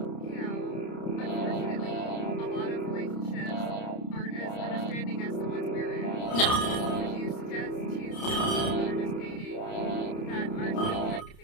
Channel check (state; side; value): late; right; 30 ms